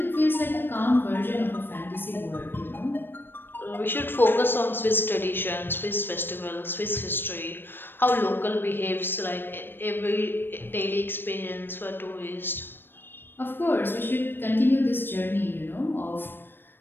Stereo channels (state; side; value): late; right; 0.098 ms